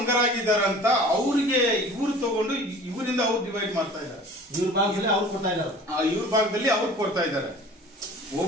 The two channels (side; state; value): both; normal; correlation 0.45